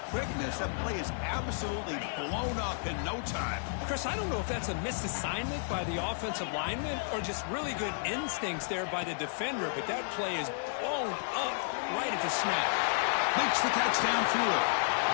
quickness. That play is absolutely blown up in no time. Chris, I don't know if that's a misassignment by the offensive lineman or just really good instincts there by the defender, but that play is blown up right at the snap. Makes the catch downfield.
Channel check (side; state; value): right; silent; 55 dB below the other